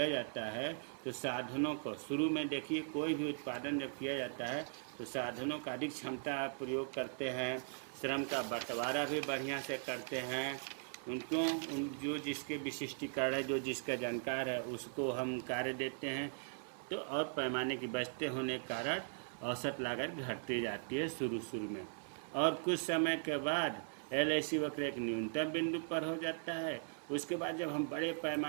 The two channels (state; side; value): silent; left; 51 dB below the other